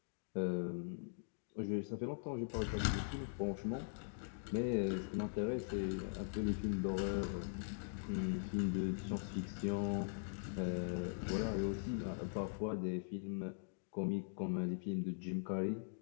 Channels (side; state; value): right; silent; digital silence